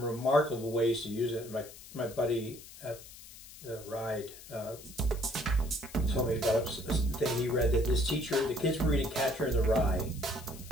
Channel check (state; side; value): noise; left; hiss, 17 dB below the sound